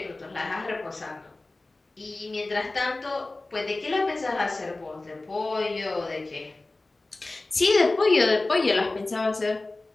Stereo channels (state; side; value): quieter; right; 3.1 dB